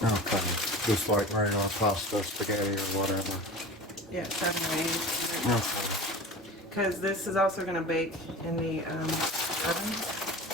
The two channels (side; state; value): both; normal; correlation 0.35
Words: Okay. Just like regular pasta, spaghetti, or whatever. Yeah, 7 or 8 minutes. Okay. Because this is also going to bake in the oven.